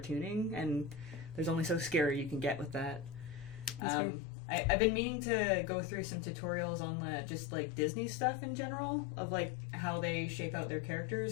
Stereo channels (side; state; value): right; drops out; at 3.8 s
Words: and there's only so scary you can get with that. I've been meaning to go through some tutorials on just like Disney stuff in general of like how they shape out their